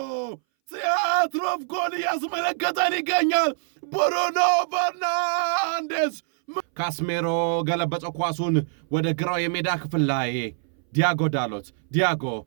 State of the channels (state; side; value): silent; left; 60 dB below the other